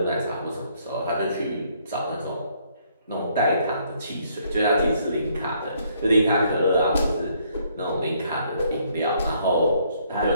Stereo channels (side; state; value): both; inverted; correlation -0.68